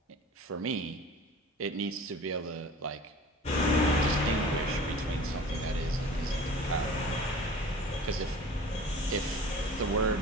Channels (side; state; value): both; normal; correlation 0.42